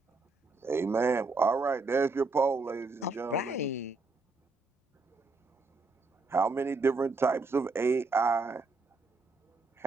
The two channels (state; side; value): quieter; left; 3.7 dB